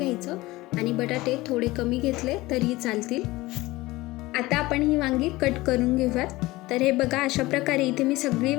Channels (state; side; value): quieter; right; 19.6 dB